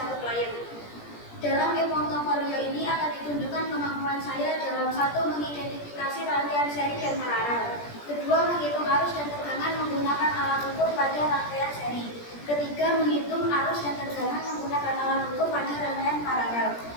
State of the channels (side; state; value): right; late; 17 ms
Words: Klayen. Dalam e-portofolio ini akan ditunjukkan kemampuan saya dalam satu mengidentifikasi rangkaian seri dan paralel, kedua menghitung arus dan tegangan menggunakan alat ukur pada rangkaian seri, ketiga menghitung arus dan tegangan menggunakan alat ukur pada rangkaian paralel,